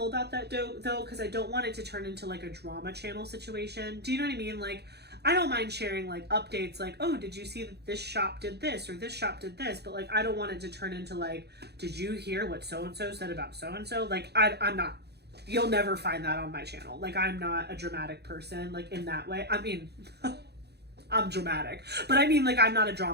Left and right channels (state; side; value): late; left; 0.48 ms